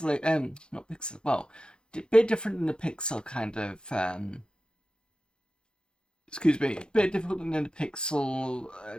not pixel, well, a bit different than the pixel kind of, excuse me, a bit different than the pixel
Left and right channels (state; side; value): late; right; 0.050 ms